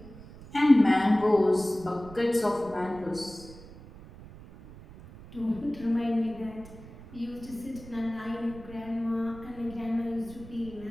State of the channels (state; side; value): noise; right; rumble, 17 dB below the sound